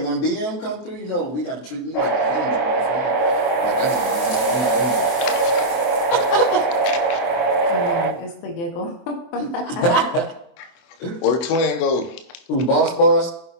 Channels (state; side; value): late; right; 23 ms